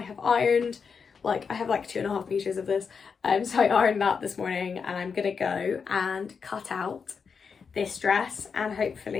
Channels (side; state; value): right; quieter; 5.9 dB